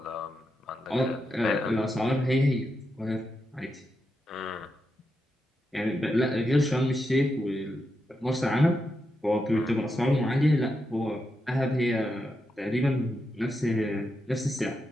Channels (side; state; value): both; normal; correlation 0.85